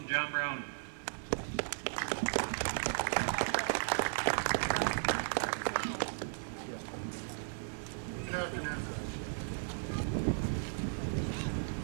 John Brown. Good afternoon.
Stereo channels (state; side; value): silent; left; digital silence